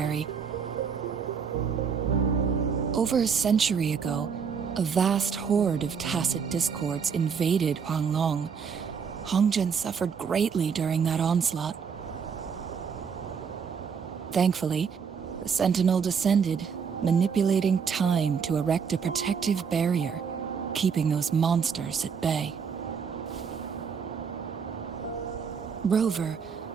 Over a century ago, a vast horde of tacit discords invaded Huanglong. Hongjian suffered greatly during that onslaught. Thankfully, the Sentinel descended, manipulating time to erect a protective barrier, keeping those monsters at bay. Rover,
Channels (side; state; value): left; quieter; 6.4 dB